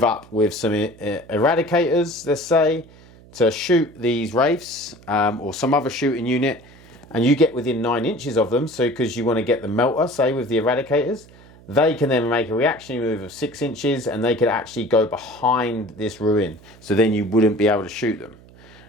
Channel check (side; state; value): right; noise; hum, 24 dB below the sound